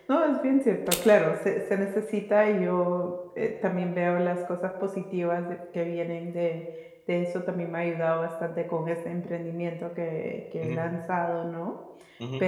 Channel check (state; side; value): identical; both; correlation 1.00